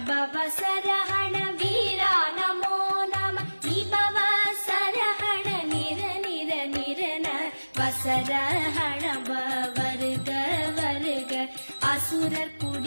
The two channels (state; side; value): inverted; both; correlation -1.00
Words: பவச ரஹண வீரா நமோ நம விபவச ரஹண நிர நிர நிரன வசரஹண வருக வருக அசுரர்